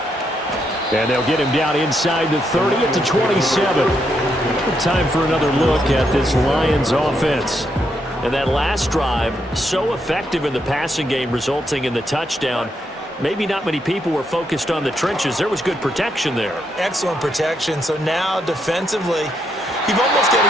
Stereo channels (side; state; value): both; normal; correlation 0.78